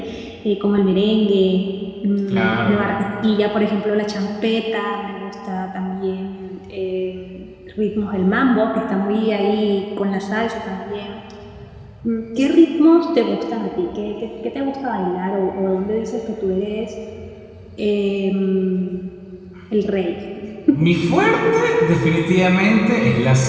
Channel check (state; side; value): identical; both; correlation 1.00